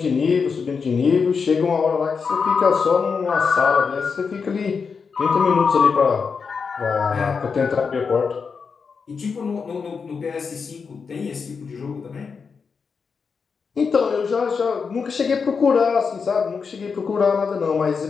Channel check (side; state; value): right; quieter; 5.5 dB